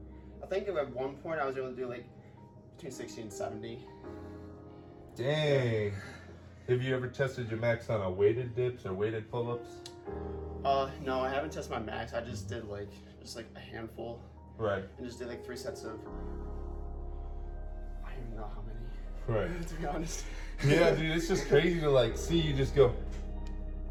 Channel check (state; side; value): identical; both; correlation 1.00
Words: think at one point I was able to do like between 60 and 70. Dang. Have you ever tested your max on a weighted dips or weighted pull-ups? No, I haven't tested my max. I just did like a handful. Right. And just did like 3 sets of. I don't even know how many. Right. To be honest. Yeah, dude, it's just crazy to like see you just go.